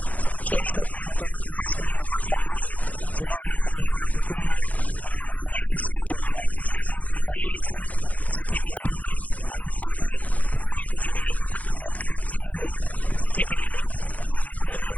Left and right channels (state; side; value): late; right; 0.073 ms